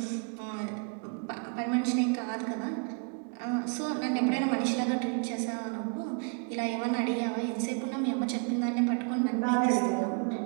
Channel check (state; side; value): quieter; left; 38.4 dB